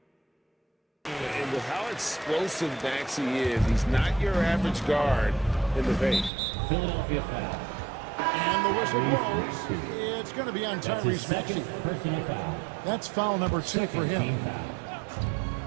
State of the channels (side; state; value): left; drops out; at 6.3 s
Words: And with how explosive Maxey is, he's not your average guard in the paint. Philadelphia foul. And the whistle blows. It's going to be on Tyrese Maxey. Personal foul. That's foul number 2 for him.